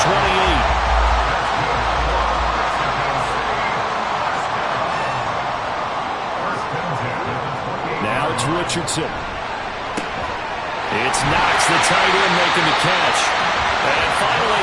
Now it's Richardson. It's Knox, the tight end, making the catch. And finally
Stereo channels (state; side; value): identical; both; correlation 1.00